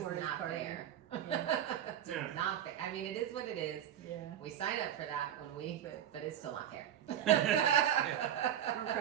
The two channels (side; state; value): left; quieter; 10.4 dB